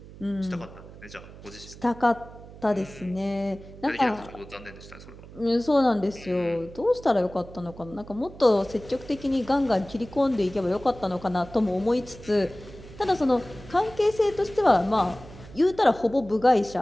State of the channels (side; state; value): right; noise; hum, 17 dB below the sound